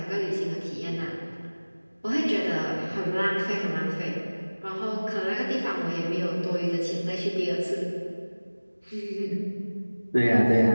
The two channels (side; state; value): both; inverted; correlation -1.00